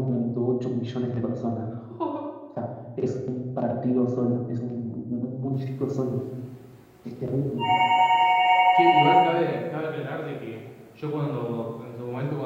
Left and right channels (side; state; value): both; identical; correlation 1.00